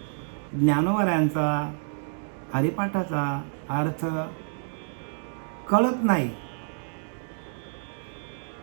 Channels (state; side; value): silent; left; 59 dB below the other